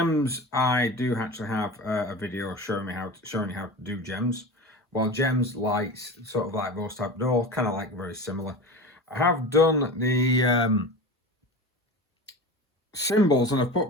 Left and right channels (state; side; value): normal; both; correlation 0.30